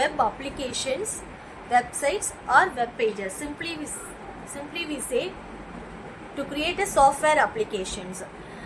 applications, websites or web pages. Simply we say to create a software applications.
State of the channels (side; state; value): both; identical; correlation 1.00